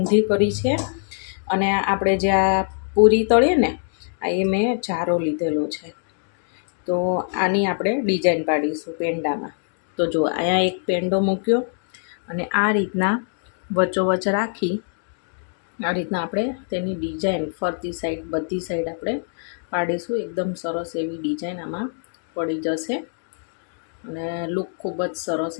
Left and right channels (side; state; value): right; silent; 63 dB below the other